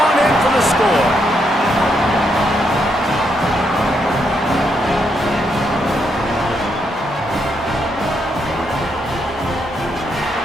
in for the score.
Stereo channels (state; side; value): normal; both; correlation 0.78